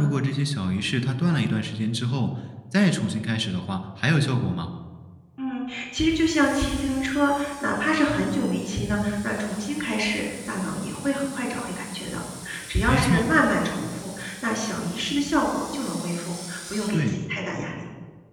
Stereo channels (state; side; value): identical; both; correlation 1.00